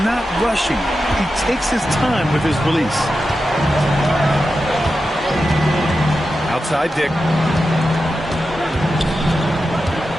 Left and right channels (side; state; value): both; normal; correlation 0.90